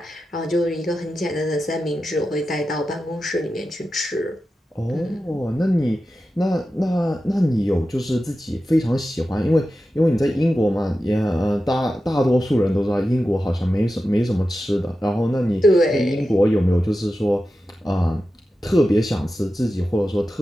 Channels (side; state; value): both; normal; correlation 0.92